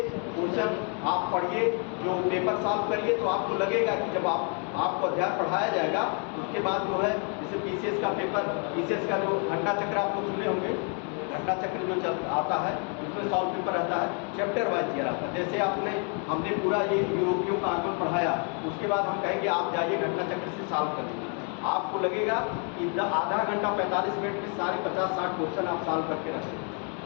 क्वेश्चन आप पढ़िए, जो पेपर सॉल्व करिए, तो आपको लगेगा कि जब आपको अध्याय पढ़ाया जाएगा उसके बाद जो है जैसे पीसीएस का पेपर, पीसीएस का जो घंटा चक्र आप लोग सुने होंगे, घंटा चक्र जो आता है उसमें सॉल्व पेपर रहता है, चैप्टर वाइज दिया रहता है। जैसे हमने पूरा ये यूरोपियों का आगमन पढ़ाया, उसके बाद हम कहेंगे आप जाइए घंटा चक्र से सॉल्व कर लीजिए। आपको लगेगा कि आधा घंटा 45 मिनट में सारे 50-60 क्वेश्चन आप सॉल्व करके रखेंगे,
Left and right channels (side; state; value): right; quieter; 39.3 dB